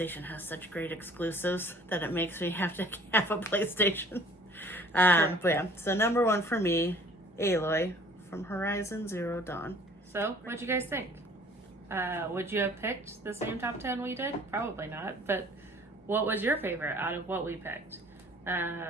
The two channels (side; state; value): both; normal; correlation 0.53